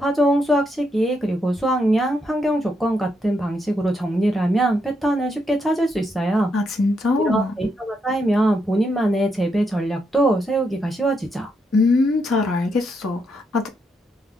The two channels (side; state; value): both; normal; correlation 0.79